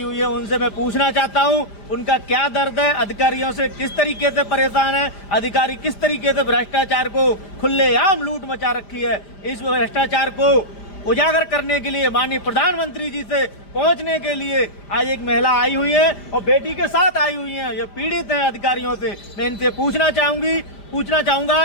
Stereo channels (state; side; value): late; right; 5.0 ms